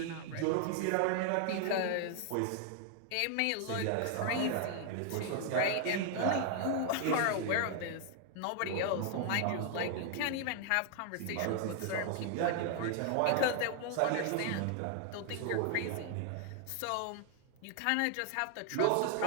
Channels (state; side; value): different; both; correlation 0.00